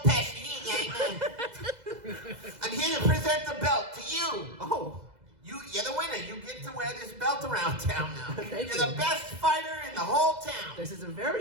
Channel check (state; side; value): late; left; 2.0 ms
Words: Pesci. I'm here to present the belt to you. Oh. You're the winner. You get to wear this belt around town now. Thank You're you. the best fighter in the whole town. This is a